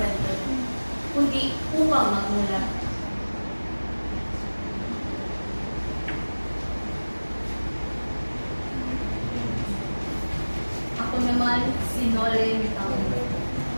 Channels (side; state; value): both; inverted; correlation -1.00